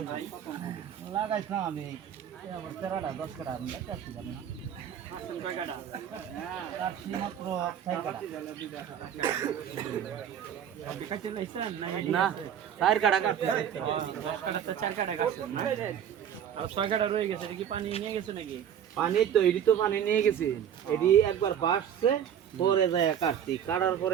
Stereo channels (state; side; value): quieter; left; 9.3 dB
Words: লাগাইছিলাম আমি আবার 13টা 10 কাটা লাগাইছি না কাটছি মাত্র 6 কাটা না 4 কাটা কাটছি 10 কাটা তো 4 কাটা কাটছেন না আর 6 কাটা রয়ে গেছে এটা কি পানি নিয়ে গেছে নাকি পানি তো এডি তো পানি নিয়ে গেছি এডি একবার বাসছে পরে যায় কাটছি কাটার